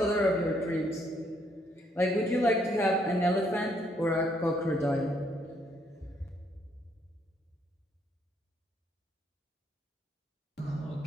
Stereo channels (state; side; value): normal; both; correlation 0.70